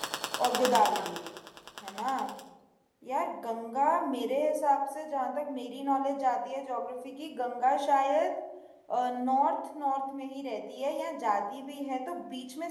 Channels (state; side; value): identical; both; correlation 1.00